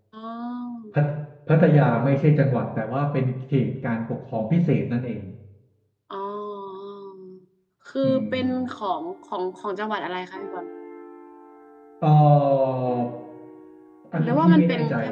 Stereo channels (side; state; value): both; identical; correlation 1.00